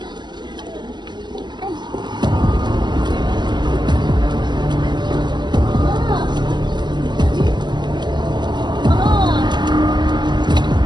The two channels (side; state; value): left; late; 0.21 ms